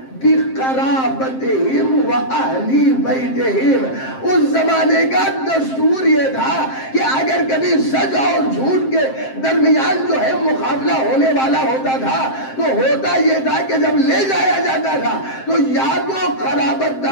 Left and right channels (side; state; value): right; late; 7.6 ms